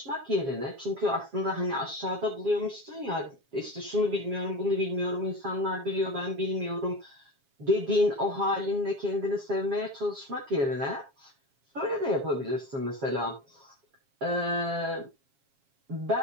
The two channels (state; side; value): late; left; 7.3 ms